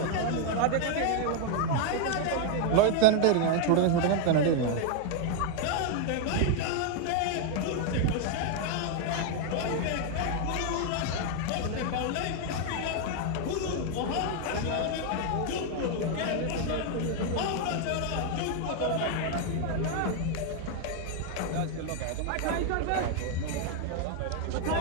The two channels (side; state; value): both; different; correlation 0.00